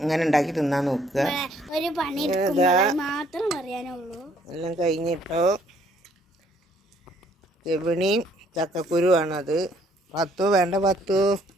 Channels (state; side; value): normal; both; correlation 0.64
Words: ഇങ്ങനെ ഉണ്ടാക്കി തിന്നാൻ നോക്കുക. എല്ലാം കഴിഞ്ഞിട്ടോ. ചെവിണിയും ചക്കക്കുരുവാണത്. പത്തു വേണ്ട, പത്തു